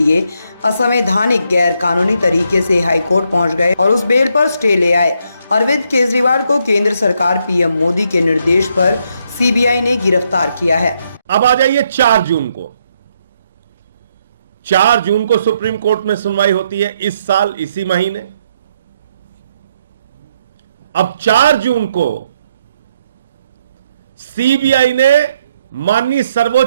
असंवैधानिक गैर कानूनी तरीके से हाईकोर्ट पहुंच गए और उस बेल पर स्टे ले आए। अरविंद केजरीवाल को केंद्र सरकार पीएम मोदी के निर्देश पर सीबीआई ने गिरफ्तार किया है। अब आ जाइए 4 जून को। 4 जून को सुप्रीम कोर्ट में सुनवाई होती है इस साल इसी महीने। अब 4 जून को सीबीआई ने माननीय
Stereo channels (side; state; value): both; inverted; correlation -0.75